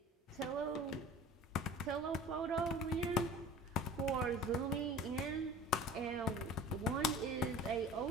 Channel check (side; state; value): both; normal; correlation 0.41